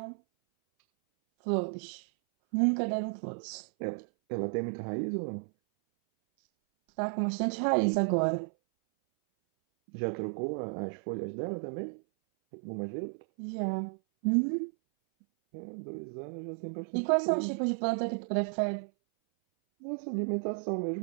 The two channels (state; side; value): silent; left; 56 dB below the other